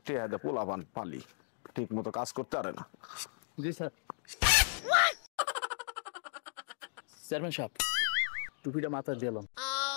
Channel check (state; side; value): silent; right; digital silence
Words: টেহাদে পোলাপান পালি ঠিক মতো কাজ করতে পারে না। জি স্যার। চেয়ারম্যান সাহেব টুপিটা মাথায় দিলাম।